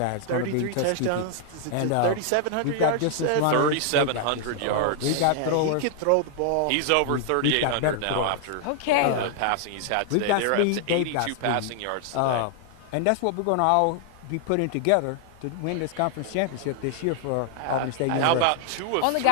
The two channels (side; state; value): both; different; correlation 0.00